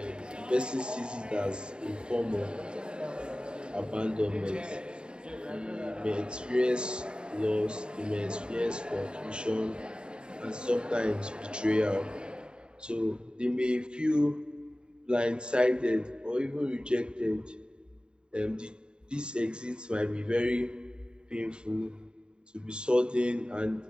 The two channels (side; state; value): left; late; 0.050 ms